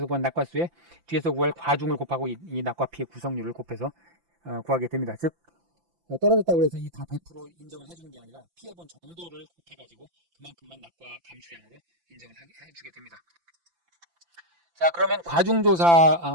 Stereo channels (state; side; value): late; left; 5.9 ms